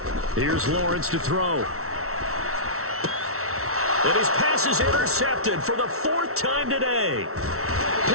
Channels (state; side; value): late; left; 0.63 ms